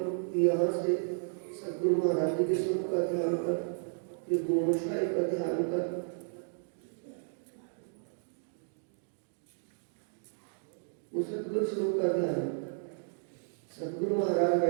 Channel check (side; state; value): left; silent; digital silence